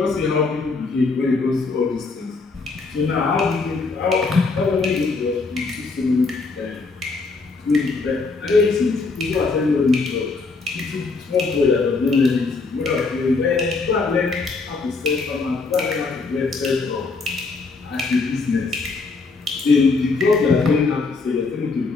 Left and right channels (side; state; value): right; quieter; 4.0 dB